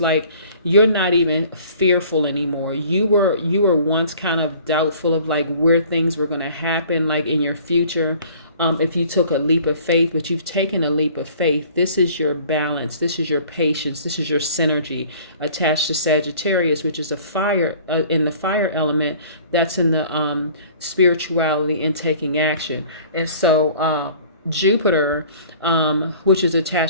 Like you're not even fearful anymore. You were once kind of doubtful of like where things were going to happen, like in your future. If you took a leap of faith, but you've taken a leap of faith. This is your balance. This is your patience. This is your synergy attached to Sagittarius, which is a fire in the fire element. That's in the spirituality and taking action. And so Jupiter, which is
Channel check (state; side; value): inverted; both; correlation -0.51